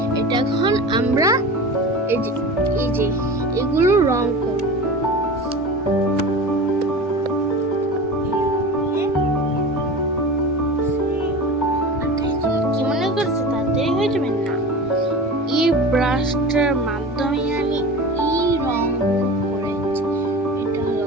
এটা এখন আমরা এই যে এগুলো রং করব। কি মনে করছো তাড়াতাড়ি হয়ে যাবে না? এই ব্রাশটার মাধ্যমে আমি এই রং করেছি। এটা হলো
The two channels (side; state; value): both; normal; correlation 0.32